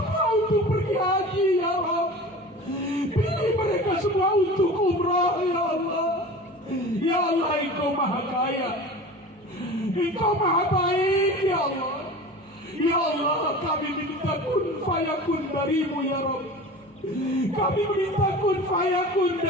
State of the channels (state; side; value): normal; both; correlation 0.36